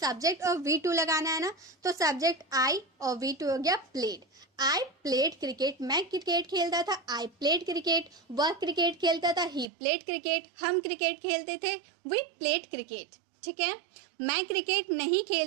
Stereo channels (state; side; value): drops out; left; at 9.7 s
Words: और V2 लगाना है ना, तो सब्जेक्ट आई और V2 हो गया प्लेड। आई प्लेड क्रिकेट, मैं क्रिकेट खेलता था, आई प्लेड क्रिकेट। वह क्रिकेट खेलता था, ही प्लेड क्रिकेट। हम क्रिकेट खेलते थे, वी प्लेड क्रिकेट। ठीक है, मैं क्रिकेट नहीं